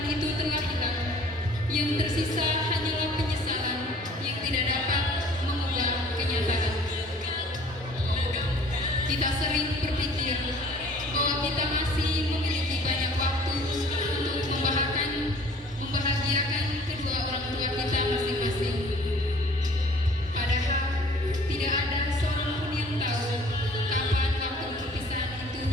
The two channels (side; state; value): both; normal; correlation 0.52